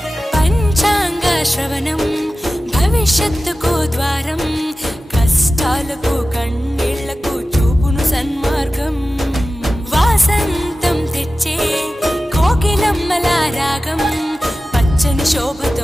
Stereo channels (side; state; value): both; normal; correlation 0.95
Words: పంచాంగ శ్రవణం భవిష్యత్తుకు ద్వారం. కష్టాలకు కన్నీళ్లకు చూపును సన్మార్గం. వాసంతం తెచ్చే కోకిలమ్మల రాగం. పచ్చని శోభతో